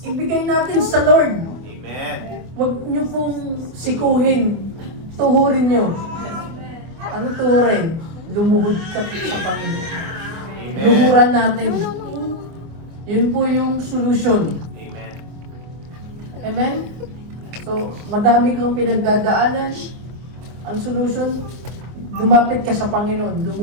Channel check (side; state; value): left; late; 25 ms